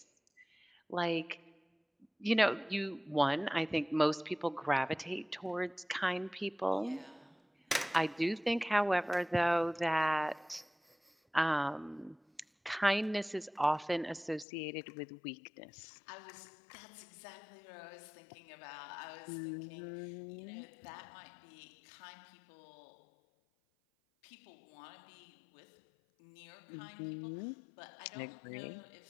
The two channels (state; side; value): drops out; right; at 14.5 s